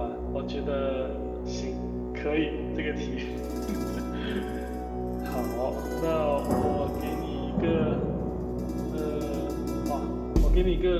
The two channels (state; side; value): identical; both; correlation 1.00